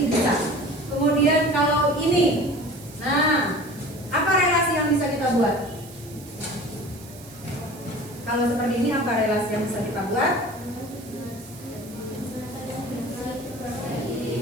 bisa. Kemudian kalau ini, nah, apa relasi yang bisa kita buat? Kalau seperti ini apa relasi yang bisa kita buat?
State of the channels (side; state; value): right; noise; hiss, 19 dB below the sound